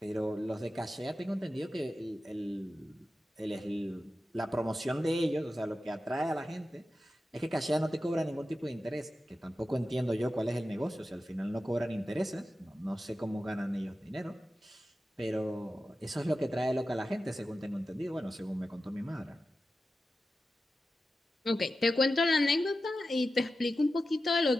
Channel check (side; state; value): both; normal; correlation 0.92